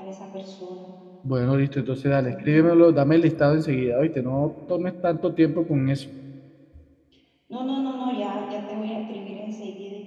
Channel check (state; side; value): identical; both; correlation 1.00